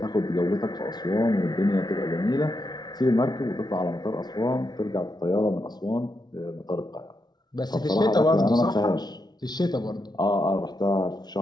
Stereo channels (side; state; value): right; late; 0.20 ms